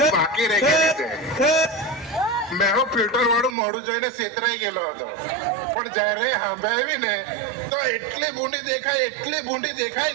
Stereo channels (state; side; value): drops out; left; at 3.6 s